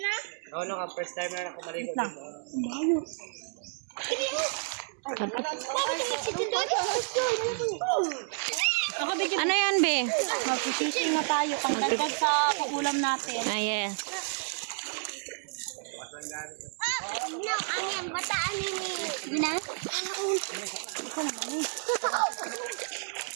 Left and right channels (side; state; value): left; silent; 57 dB below the other